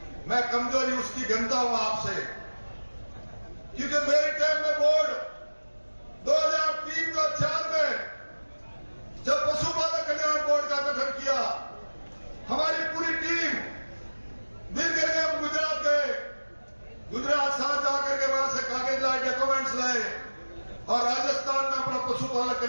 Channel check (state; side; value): inverted; both; correlation -1.00